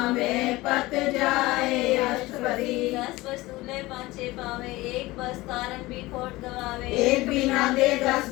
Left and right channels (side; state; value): right; quieter; 19.7 dB